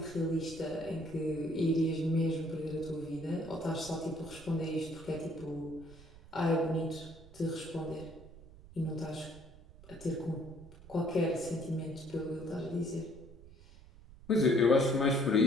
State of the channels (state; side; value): noise; right; rumble, 20 dB below the sound